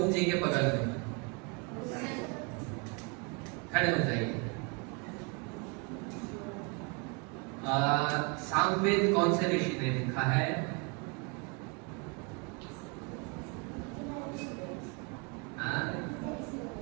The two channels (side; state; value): left; quieter; 32.1 dB